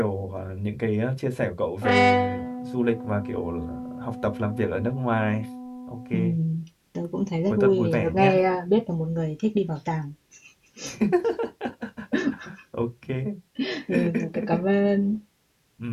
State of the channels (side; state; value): both; identical; correlation 1.00